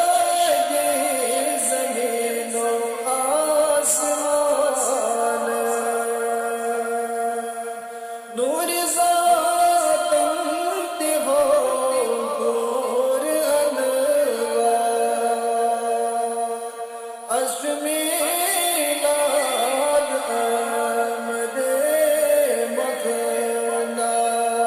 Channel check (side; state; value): both; identical; correlation 1.00